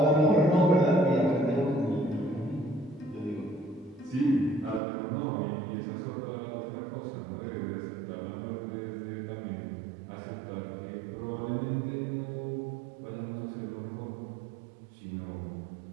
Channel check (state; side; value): drops out; left; at 4.8 s